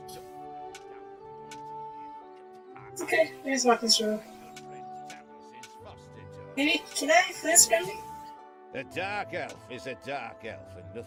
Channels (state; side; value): identical; both; correlation 1.00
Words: stuck. Okay, let's walk this road. Maybe, can I flinch Grimly? A dark elf is a dark elf, and